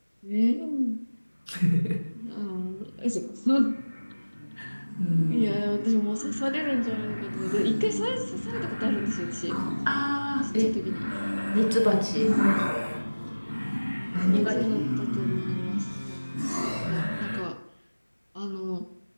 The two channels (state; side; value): inverted; both; correlation -1.00